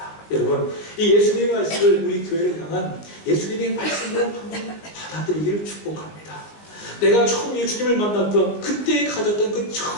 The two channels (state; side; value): late; right; 19 ms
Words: 여러분, 이 예수님의 말씀을 우리 교회를 향한 예수님의 말씀으로 한번 받아들이기를 축복합니다. 내가 처음 예수님을 만났던 그때 가졌던 그